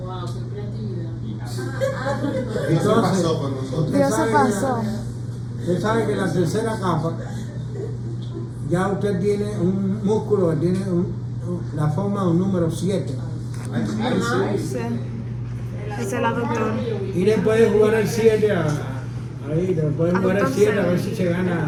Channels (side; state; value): both; identical; correlation 1.00